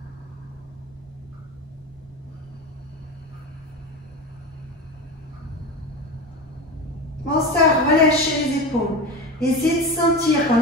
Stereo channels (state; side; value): normal; both; correlation 0.25